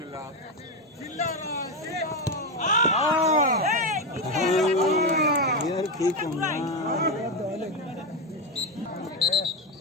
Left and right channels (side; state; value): both; normal; correlation 0.11